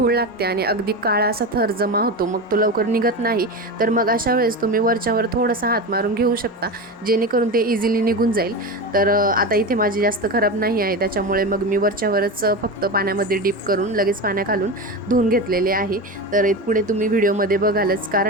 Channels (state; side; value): normal; both; correlation 0.22